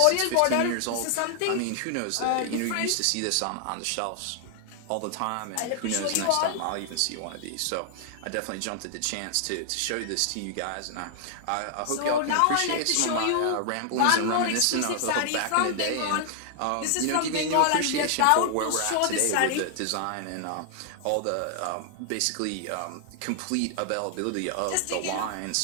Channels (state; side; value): different; both; correlation 0.00